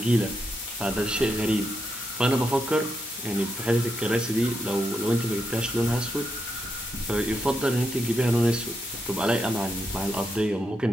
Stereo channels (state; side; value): normal; both; correlation 0.82